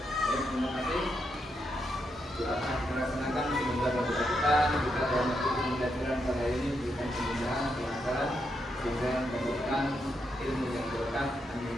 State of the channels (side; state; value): both; normal; correlation 0.82